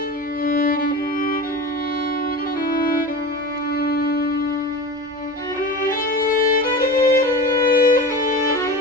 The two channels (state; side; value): normal; both; correlation 0.31